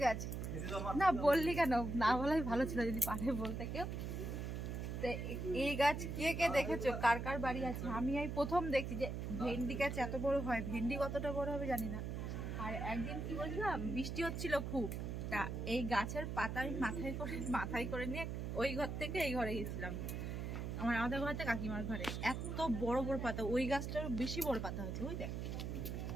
গাছ না বললি কেন? না বলাই ভালো ছিল যদি পারে বলতে কেউ। এই গাছ কে কে দেখেছো, কার কার বাড়ি আছে? আমি এই প্রথম দেখছি যে ভেন্ডি গাছ এত বড় হয়। ভেন্ডি কতটা বড় হবে জানি না। আর একদিন কি বলছিলাম, বৃষ্টি হচ্ছিল খুব, তা এই গাছের পাতা আমি মাথায় করে নিয়ে ওই ঘর থেকে এই ঘরে গেছিলাম, আমাদের ঘর থেকে কাকিমার ঘরে। এত বড় বড় পাতা, ওই গাছটার বেশি বড় পাতা হয়েছে। ওই দেখ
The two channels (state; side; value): noise; right; hum, 4 dB below the sound